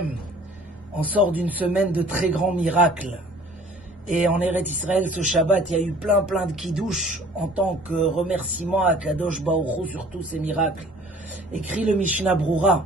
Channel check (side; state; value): both; normal; correlation 0.51